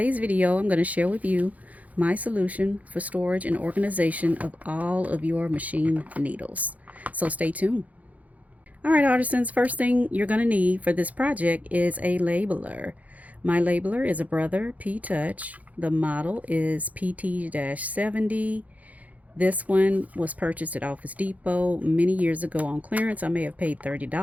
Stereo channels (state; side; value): late; left; 0.073 ms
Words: video I'm going to share with you my solution for storage and organization of all of your machine needles. So stay tuned. Alright artisans, first thing you're going to need for this project is a labeler. My labeler is a Brother P-Touch. The model is PT-70. This one was purchased at Office Depot many years ago on clearance. I may have paid